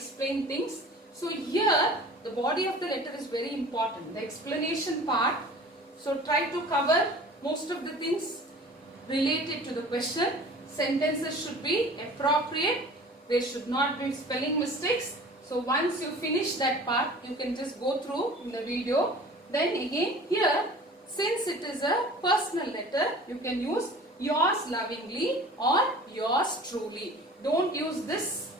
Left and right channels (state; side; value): normal; both; correlation 0.43